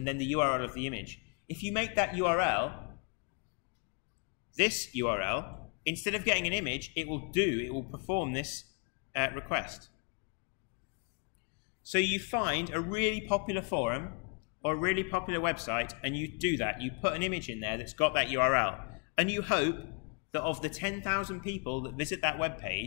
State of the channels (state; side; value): quieter; right; 37.2 dB